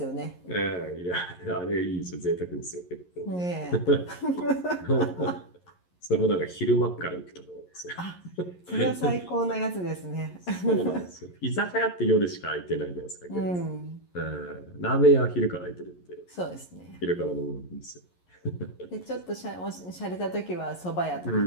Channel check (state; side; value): late; right; 11 ms